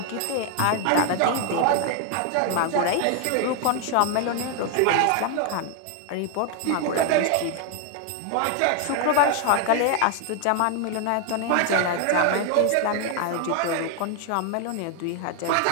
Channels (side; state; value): both; different; correlation 0.01